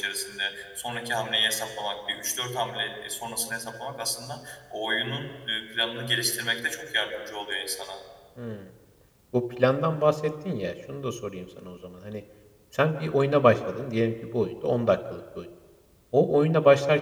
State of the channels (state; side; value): identical; both; correlation 1.00